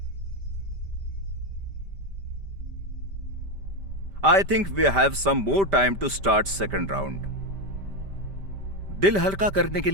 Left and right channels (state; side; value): late; left; 5.1 ms